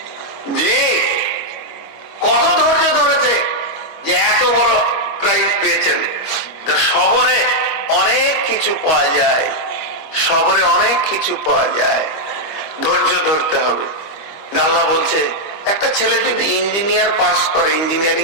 জি, কত ধৈর্য ধরেছে যে এত বড় প্রাইজ পেয়েছেন। সবরে অনেক কিছু পাওয়া যায়, সবরে অনেক কিছু পাওয়া যায়, ধৈর্য ধরতে হবে। আল্লাহ বলছে, একটা ছেলে যদি ইঞ্জিনিয়ার পাস করে, ইঞ্জিনিয়ারিং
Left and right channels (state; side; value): late; right; 25 ms